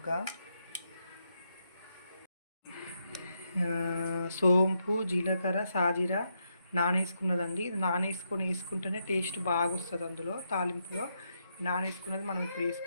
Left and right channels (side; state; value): both; inverted; correlation -0.80